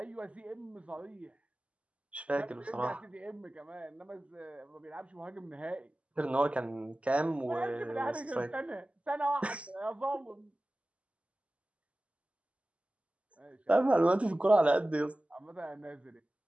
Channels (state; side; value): late; left; 0.062 ms